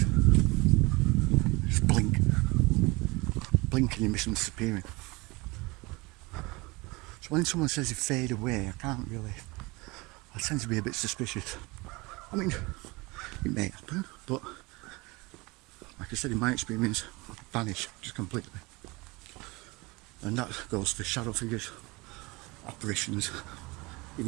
Just blink. Blink and you miss them disappearing. So when someone says they fade away, I can't really... I tend to be a bit suspicious. I mean, it may happen, but like I said, in my experience, vanish just completely. And that goes for shadow figures, apparitions,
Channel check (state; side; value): quieter; left; 24.5 dB